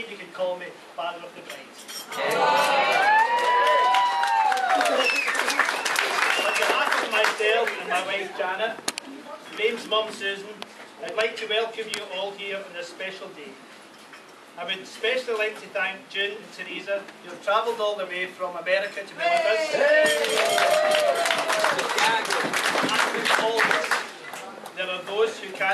you can call me Father of the Bride. On behalf of myself and my wife Janet, Graham's mum Susan, I'd like to welcome you all here on this special day. I would especially like to thank June and Teresa, who have travelled all the way from America to be with us. And always, there are those who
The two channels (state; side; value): identical; both; correlation 1.00